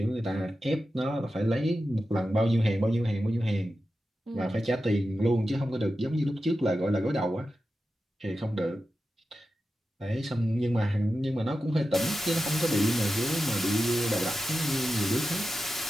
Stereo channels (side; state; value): both; normal; correlation 0.91